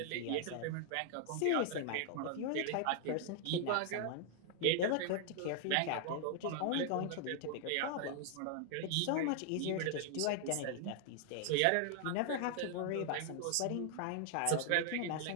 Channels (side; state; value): both; different; correlation 0.00